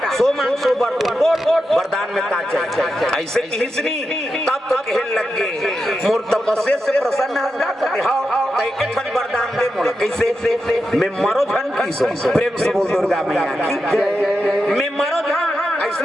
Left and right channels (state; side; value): normal; both; correlation 0.88